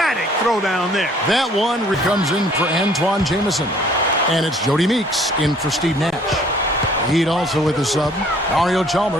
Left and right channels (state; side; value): normal; both; correlation 0.57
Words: throwdown there. That one comes in for Antoine Jameson. And it's Jody Meeks in for Steve Nash. Heat also with the sub. Mario